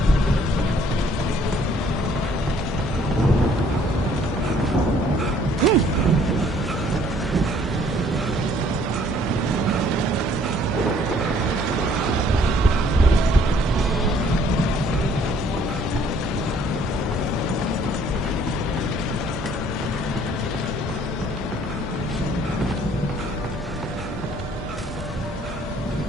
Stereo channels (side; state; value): both; normal; correlation 0.60